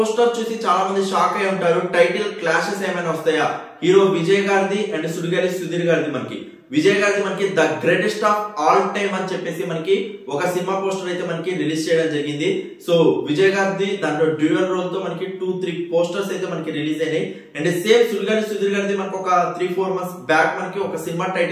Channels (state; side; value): identical; both; correlation 1.00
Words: చూసి చాలా మంది షాక్ అయి ఉంటారు. టైటిల్ క్లాషెస్ ఏమైనా వస్తాయా? హీరో విజయ్ గారిది అండ్ సుడిగాలి సుధీర్ గారిది. మనకి విజయ్ గారిది మనకి the greatest of all time అని చెప్పేసి మనకి ఒక సినిమా పోస్టర్ అయితే మనకి రిలీజ్ చేయడం జరిగింది. సో విజయ్ గారిది దాంట్లో డ్యూయల్ రోల్ తో మనకి 2-3 పోస్టర్స్ అయితే మనకి రిలీజ్ అయినాయి. అండ్ సేమ్ సుడిగాలి సుధీర్ గారిది మనకి ఒక 3-4 మంత్స్ బ్యాక్ మనకి ఒక సినిమా